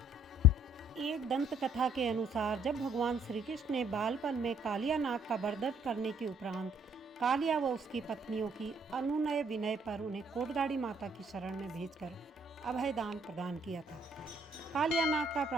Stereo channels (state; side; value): normal; both; correlation 0.64